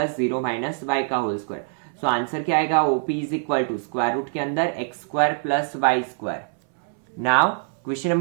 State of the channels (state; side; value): silent; left; 63 dB below the other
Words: 0 minus y का होल स्क्वायर। सो आंसर क्या आएगा OP is equal to square root के अंदर x square plus y square. Now question